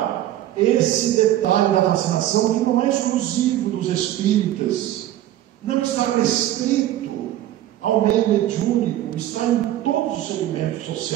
esse detalhe da fascinação, que não é exclusivo dos espíritas, não está restrito ao meio mediúnico, está em todos os segmentos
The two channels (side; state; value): left; quieter; 13.3 dB